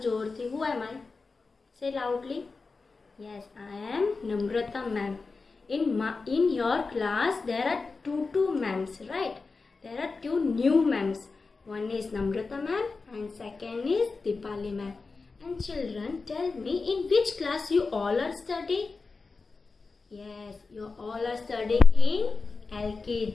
જોરથી. Who am I? Say loudly. Yes, I am Namrata ma'am. In your class there are two ma'ams, right? There are two new ma'ams. One is Namrata ma'am and second is Dipali ma'am. And children, tell me, in which class you all are studying? Yes, you all are studying in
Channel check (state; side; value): quieter; right; 4.2 dB